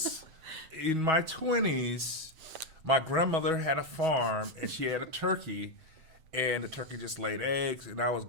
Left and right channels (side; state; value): left; late; 7.7 ms